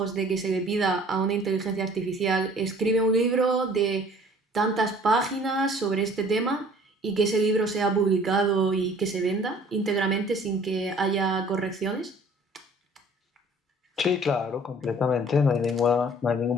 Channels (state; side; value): normal; both; correlation 0.52